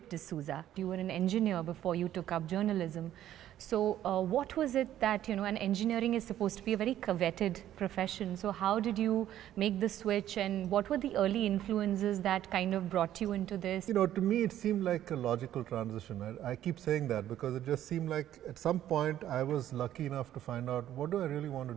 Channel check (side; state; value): left; quieter; 12.1 dB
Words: D'Souza. You were an engineer before you took up journalism. So what was it that, and engineering is supposed to be a very coveted profession. So how did you make the switch, and what were the early influences that kind of brought you into this? To me it seemed like a logical transition. I keep saying that because it just seemed like at some point I was lucky enough to find out what do I really want to